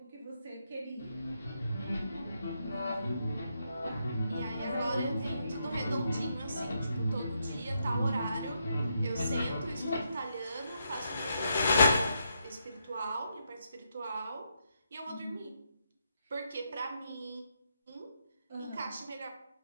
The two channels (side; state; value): both; inverted; correlation -0.80